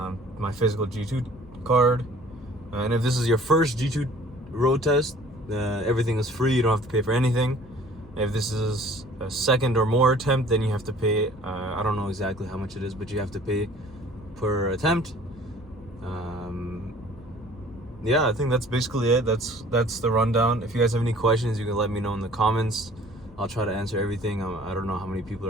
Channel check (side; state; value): both; normal; correlation 0.51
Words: My physical G2 card. And if this is your first G2 road test, everything is free. You don't have to pay for anything. If this is a second or more attempt, then you have to pay. I don't know exactly how much it is, but you have to pay per attempt. Yeah, I think that's basically it. That's the rundown. If you guys have any questions, you can let me know in the comments. I'll try to answer everything. I don't know how many people